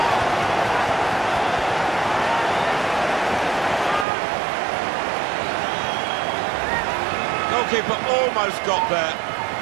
Goalkeeper almost got there,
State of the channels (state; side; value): drops out; left; at 4.0 s